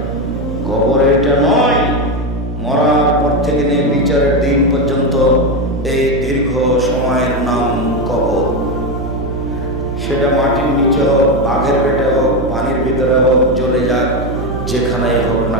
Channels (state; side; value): noise; right; hum, 6 dB below the sound